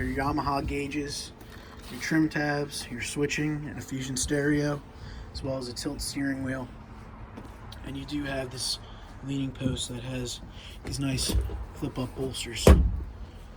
Yamaha gauges, your trim tabs, your switching, and a Fusion stereo, as well as a tilt steering wheel. And you do have this leaning post that has these nice flip-up bolsters.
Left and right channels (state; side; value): identical; both; correlation 1.00